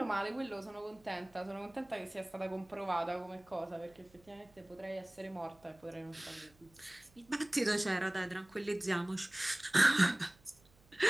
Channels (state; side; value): noise; right; hum, 29 dB below the sound